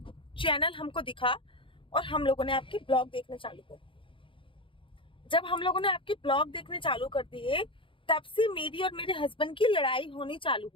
चैनल हमको दिखा और हम लोगों ने आपके ब्लॉग देखने चालू कर दिए। जब हम लोगों ने आपके ब्लॉग देखने चालू कर दिए, तब से मेरी और मेरे हस्बैंड की लड़ाई होनी चालू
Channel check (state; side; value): late; right; 0.25 ms